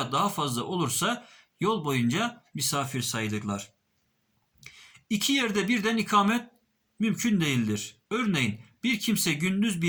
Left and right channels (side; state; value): both; identical; correlation 1.00